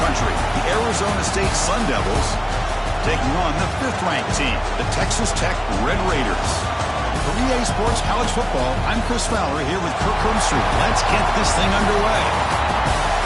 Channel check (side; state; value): both; identical; correlation 1.00